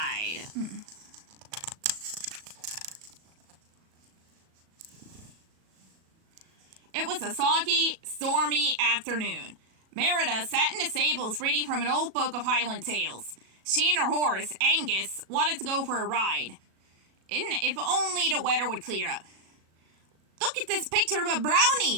It was a soggy, stormy afternoon. Merida sat in the stables reading from an old book of Highland tales. She and her horse, Angus, wanted to go for a ride. If only the weather would clear up. Look at this picture of a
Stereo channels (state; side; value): late; left; 37 ms